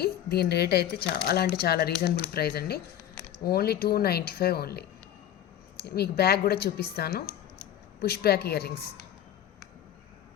దీని రేట్ అయితే చాలా అంటే చాలా రీజనబుల్ ప్రైస్ అండి. Only 295 only. మీకు బ్యాగ్ కూడా చూపిస్తాను. పుష్ బ్యాక్ ఇయర్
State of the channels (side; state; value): right; quieter; 11.0 dB